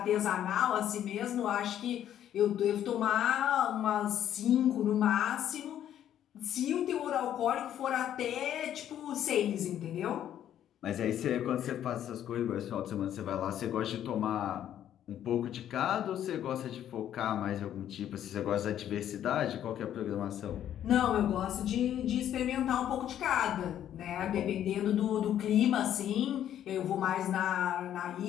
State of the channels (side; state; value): right; quieter; 10.8 dB